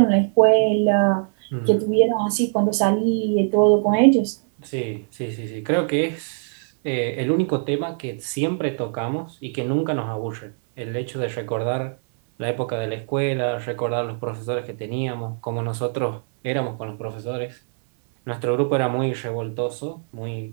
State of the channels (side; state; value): left; silent; 60 dB below the other